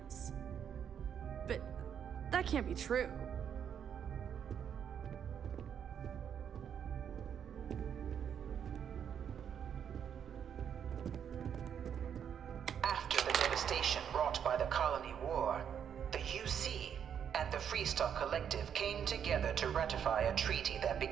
But that can't be true. After the devastation wrought by the colony war, the UC and the Freestar Collective came together to ratify a treaty that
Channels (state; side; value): quieter; left; 8.3 dB